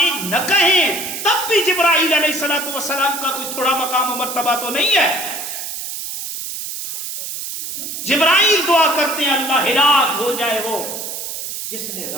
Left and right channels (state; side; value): noise; right; hiss, 7 dB below the sound